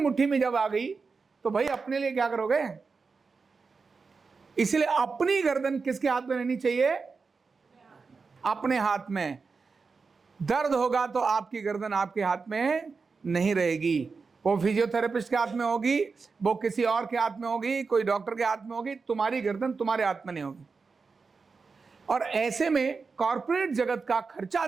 में जब आ गई तो भाई अपने लिए क्या करोगे? इसलिए अपनी गर्दन किसके हाथ में रहनी चाहिए? अपने हाथ में। दर्द होगा तो आपकी गर्दन आपके हाथ में नहीं रहेगी, वो फिजियोथेरेपिस्ट के हाथ में होगी, वो किसी और के हाथ में होगी, कोई डॉक्टर के हाथ में होगी। तुम्हारी गर्दन तुम्हारे हाथ में नहीं होगी। और ऐसे में कॉर्पोरेट जगत का खर्चा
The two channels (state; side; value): quieter; left; 4.7 dB